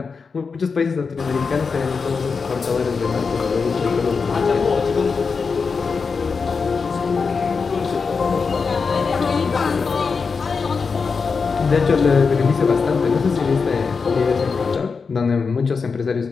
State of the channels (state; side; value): quieter; right; 5.1 dB